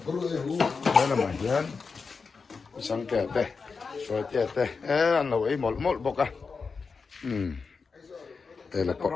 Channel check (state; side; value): quieter; right; 4.9 dB